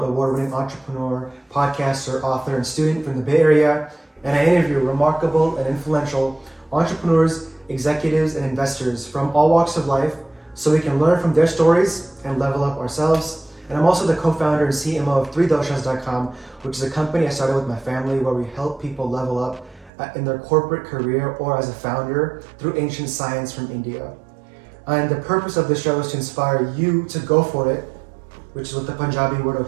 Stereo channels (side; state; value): left; drops out; at 19.9 s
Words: award-winning entrepreneur, podcaster, author, and student from the Bay Area, and I interview remarkable and influential entrepreneurs, executives, and investors from all walks of life so we can learn from their stories and level up ourselves. And I'm also the co-founder and CMO of 3doshas.com, which is a company I started with my family where we help people level up in their corporate career or as a founder through ancient science from India. And the purpose of the show is to inspire you to go for it, which is what the Punjabi word